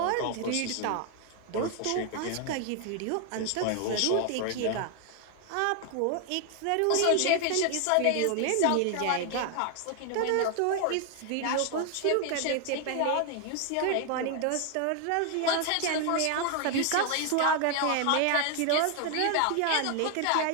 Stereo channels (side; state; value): both; different; correlation 0.00